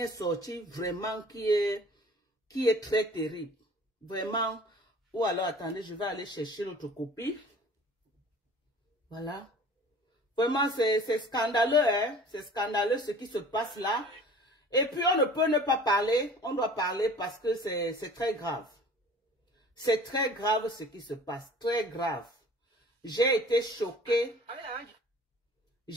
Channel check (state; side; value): normal; both; correlation 0.46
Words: sortie, vraiment qui est très terrible. Vraiment. Ou alors, attendez, je vais aller chercher l'autre copie. Voilà. Vraiment, c'est scandaleux, hein. C'est scandaleux ce qui se passe là. Et puis, on ne peut ne pas parler. On doit parler parce que c'est très grave. C'est très grave ce qui se passe. Très grave. J'ai été choquée.